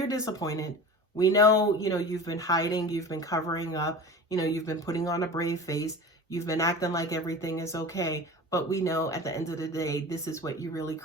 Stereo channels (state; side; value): normal; both; correlation 0.35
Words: disappointed. We know, you've been hiding, you've been covering up, you've been putting on a brave face, you've been acting like everything is okay, but we know at the end of the day, this is what you really